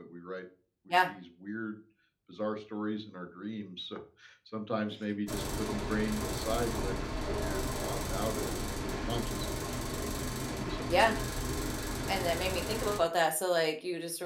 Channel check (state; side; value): identical; both; correlation 1.00